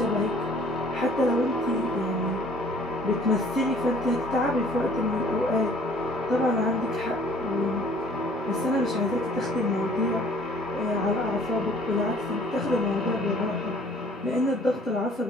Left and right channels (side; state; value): both; normal; correlation 0.55